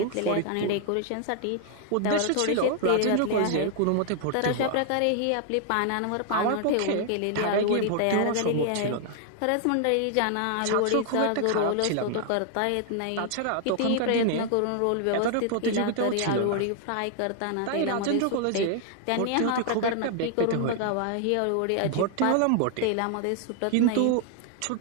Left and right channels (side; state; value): both; different; correlation 0.00